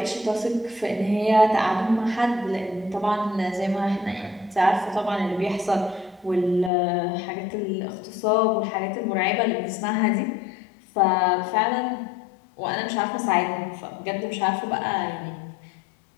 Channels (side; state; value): right; drops out; at 6.7 s